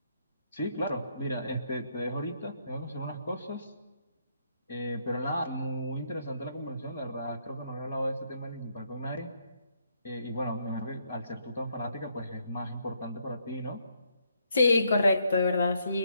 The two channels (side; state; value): both; inverted; correlation -0.73